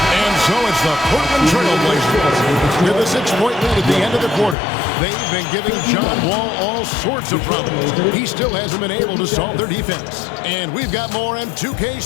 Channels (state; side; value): drops out; right; at 4.5 s